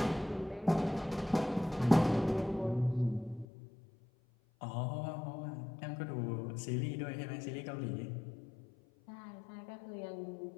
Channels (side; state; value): right; drops out; at 3.5 s